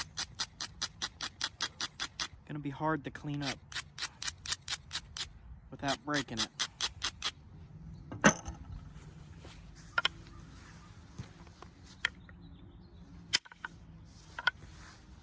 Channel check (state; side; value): identical; both; correlation 1.00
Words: be hard to clean up without breaking it.